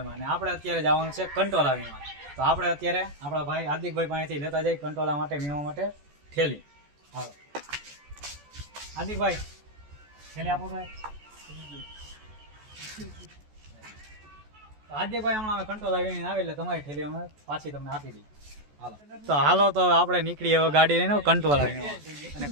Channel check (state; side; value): late; left; 14 ms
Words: અને આપણે અત્યારે જવાનું છે કંટોલા વીણવા. તો આપણે અત્યારે આપણા ભાઈ હાર્દિકભાઈ પાસેથી લેતા જઈએ કંટોલા માટે વીણવા માટે થેલી. હાલો હાર્દિકભાઈ, થેલી આપો ભાઈ. હાર્દિકભાઈ હમણાં અમે કંટોલા વીણીને આવે એટલે તમારી થેલી અમે પાછી તમને આપી દઈએ. હાલો તો હાલો તો આપણે નીકળીએ હવે ગાડી લઈને કંટોલા વીણવા.